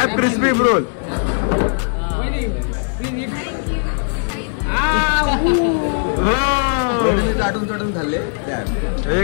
crispy roll. चाटून खाल्ले.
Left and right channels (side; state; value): right; silent; 61 dB below the other